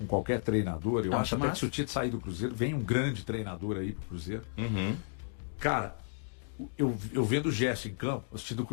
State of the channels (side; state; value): right; silent; digital silence